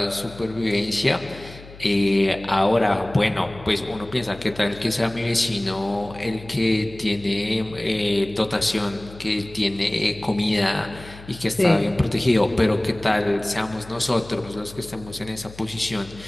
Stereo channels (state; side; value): noise; left; hum, 18 dB below the sound